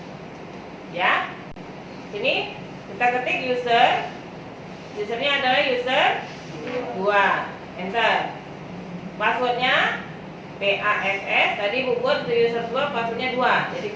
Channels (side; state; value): both; identical; correlation 1.00